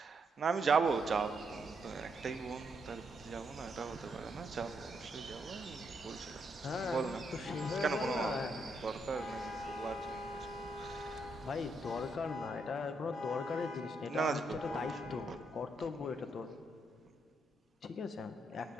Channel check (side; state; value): both; normal; correlation 0.78